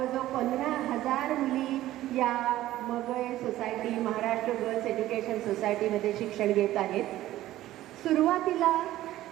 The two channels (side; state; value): left; quieter; 14.8 dB